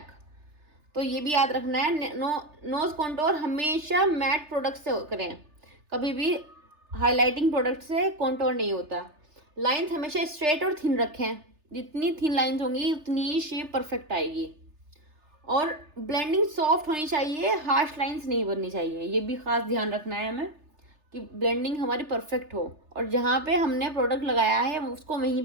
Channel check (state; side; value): late; left; 3.3 ms